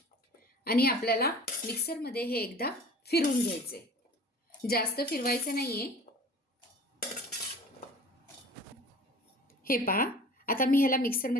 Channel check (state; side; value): normal; both; correlation 0.43